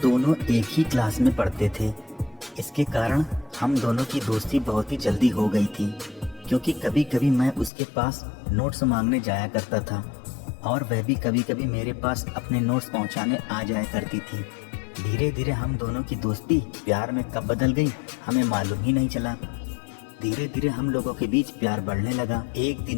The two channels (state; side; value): drops out; right; at 7.7 s